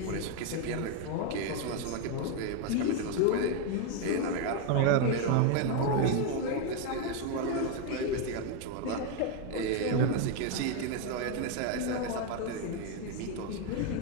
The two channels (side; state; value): both; different; correlation 0.01